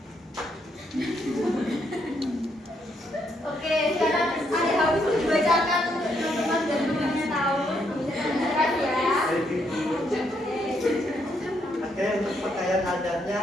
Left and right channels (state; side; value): normal; both; correlation 0.75